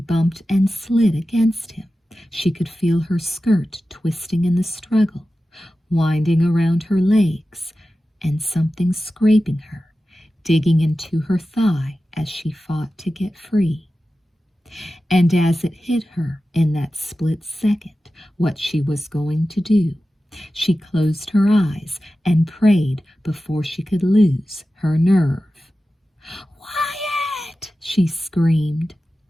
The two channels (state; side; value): normal; both; correlation 0.94